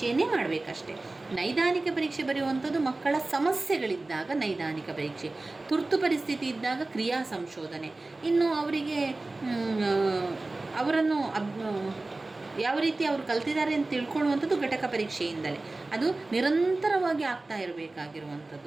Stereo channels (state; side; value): quieter; left; 3.1 dB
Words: ಮಾಡಬೇಕಷ್ಟೆ. ನೈದಾನಿಕ ಪರೀಕ್ಷೆ ಬರೆಯುವಂಥದ್ದು ಮಕ್ಕಳ ಸಮಸ್ಯೆಗಳಿದ್ದಾಗ ನೈದಾನಿಕ ಪರೀಕ್ಷೆ, ತುರ್ತು ಪರಿಸ್ಥಿತಿ ಇದ್ದಾಗ ಕ್ರಿಯಾ ಸಂಶೋಧನೆ, ಇನ್ನು ಅವರಿಗೆ ಅವರನ್ನು ಯಾವ ರೀತಿ ಅವರು ಕಲ್ತಿದ್ದಾರೆ ಅಂತ ತಿಳ್ಕೊಳ್ಳುವಂಥದ್ದು ಘಟಕ ಪರೀಕ್ಷೆಯಿಂದಲೇ. ಅದು ನಿರಂತರವಾಗಿ ಆಗ್ತಾ